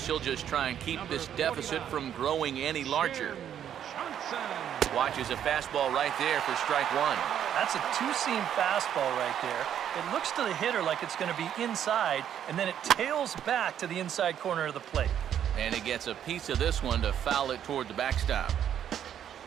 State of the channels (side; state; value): left; quieter; 9.7 dB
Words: he'll just try and keep this deficit from growing any larger. Watches a fastball right there for strike 1. That's a two-seam fastball right there. It looks to the hitter like it's going to be inside, and then it tails back to the inside corner of the plate. And he gets a piece of this one to foul it toward the backstop.